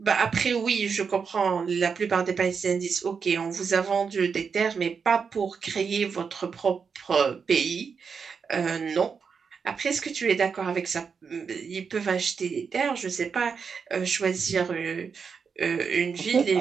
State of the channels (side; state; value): left; quieter; 5.9 dB